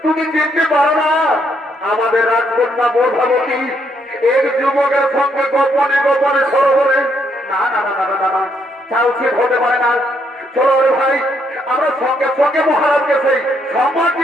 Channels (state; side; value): normal; both; correlation 0.73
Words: তুমি চিনতে পারো না আমাদের রাজকন্যা প্রভাবতী এক যুবকের সঙ্গে গোপনে গোপনে সরোবরে? না না না না না না, তা উচিত হতে পারে না। চলো রে ভাই, আমরা সঙ্গে সঙ্গে মহারাজকে সেই